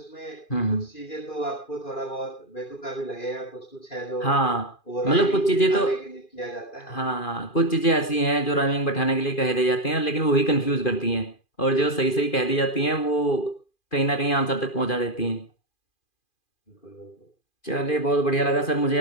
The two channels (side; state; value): right; late; 2.4 ms